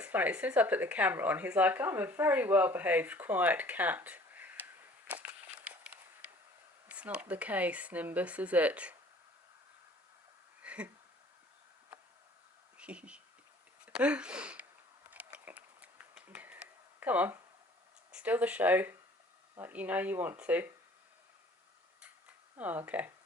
funny. As soon as I put the camera on, he's like, I'm a very well-behaved, quiet cat. It's not the case, Nimbus, is it? Come on. Still the show. Like you know you want to. Oh, okay.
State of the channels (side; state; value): both; normal; correlation 0.52